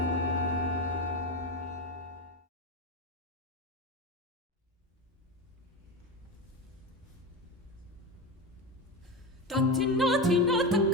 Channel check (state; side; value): normal; both; correlation 0.20